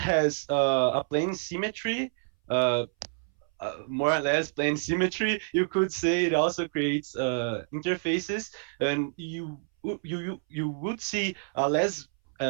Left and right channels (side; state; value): left; silent; 59 dB below the other